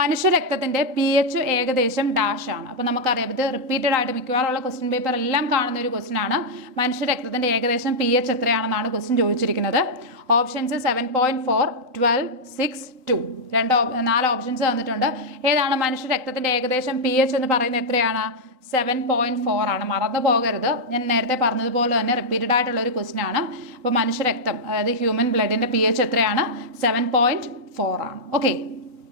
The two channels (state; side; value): late; left; 3.9 ms